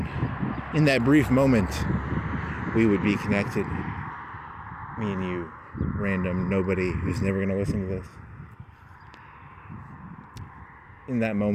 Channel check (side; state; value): both; identical; correlation 1.00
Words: in that brief moment, we would be connected. Me and you, random nobody who's never going to listen to this. In that